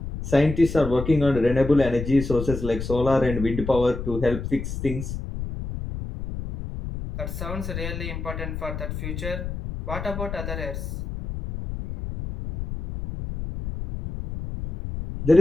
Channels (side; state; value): left; noise; rumble, 6 dB below the sound